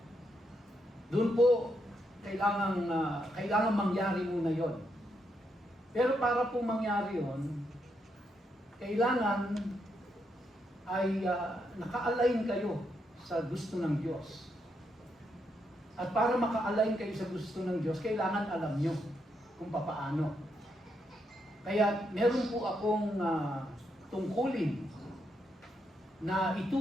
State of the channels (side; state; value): both; normal; correlation 0.80